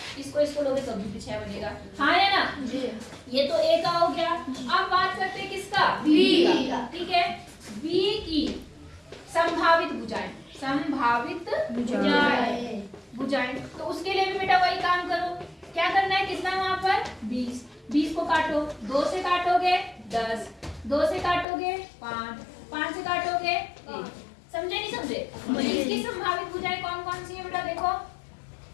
इसको लोगे तो भी 6 बनेगा। हाँ या ना? ये तो A का हो गया। अब बात करते हैं किसका? B का। ठीक है, B की संभावित भुजाएं। संभावित भुजाएं तो उसके लिए भी बेटा वही काम करो। क्या करना है? कितना वहां पर? 20। 20 को काटो, 2 से काटोगे 10, 2 से काटोगे 5, 5 से काटोगे 1। समझे नहीं समझे? इसकी संभावित भुजाएं कौन कौन सी है बेटा? देखो,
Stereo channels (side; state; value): right; drops out; at 21.5 s